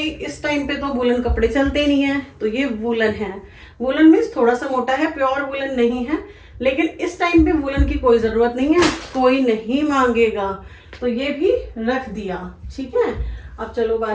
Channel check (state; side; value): identical; both; correlation 1.00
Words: इस टाइम पे तो वूलन कपड़े चलते नहीं है, तो ये वूलन है। वूलन मीन्स थोड़ा सा मोटा है, प्योर वूलन नहीं है, लेकिन इस टाइम पे वूलन की कोई जरूरत नहीं है, कोई नहीं मांगेगा, तो ये भी रख दिया, ठीक है। अब चलो